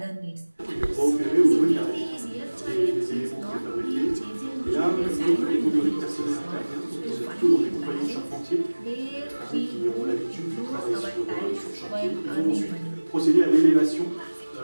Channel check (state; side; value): inverted; both; correlation -1.00